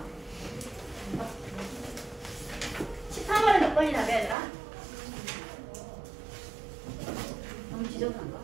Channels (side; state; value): left; drops out; at 4.4 s